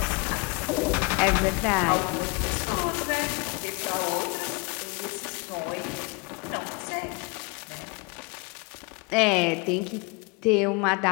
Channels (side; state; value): right; quieter; 29.5 dB